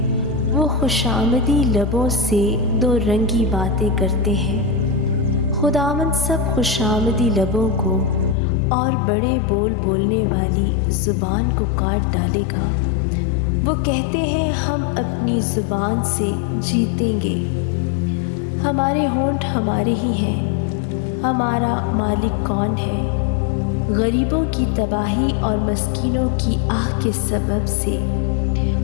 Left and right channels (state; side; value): drops out; right; at 8.3 s